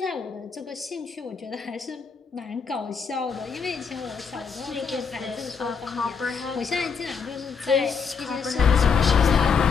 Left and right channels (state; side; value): quieter; right; 5.8 dB